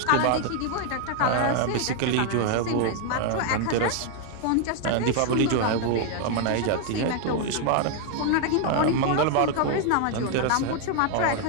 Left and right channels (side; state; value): both; different; correlation 0.00